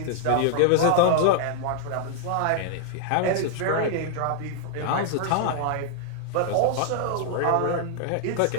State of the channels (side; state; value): both; different; correlation 0.00